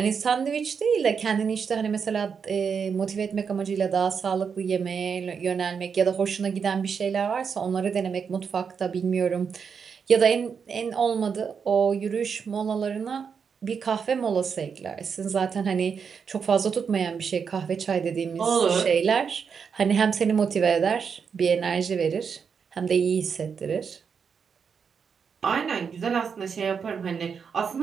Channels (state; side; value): quieter; left; 6.3 dB